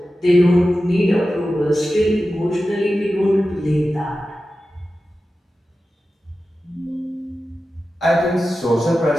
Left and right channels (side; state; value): both; normal; correlation 0.93